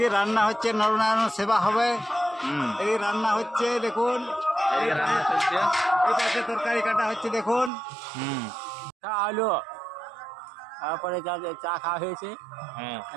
রান্না হচ্ছে, নরনারায়ণ সেবা হবে। এই রান্না হচ্ছে দেখুন, এই রান্না চলছে, এই পাশে তরকারি কাটা হচ্ছে দেখুন। আলো তারপরে চা খাওয়া হয়েছে,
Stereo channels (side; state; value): left; drops out; at 7.7 s